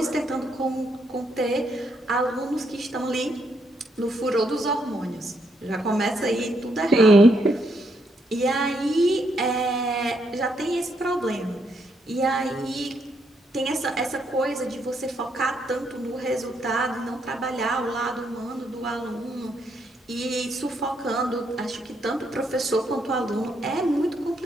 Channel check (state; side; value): normal; both; correlation 0.76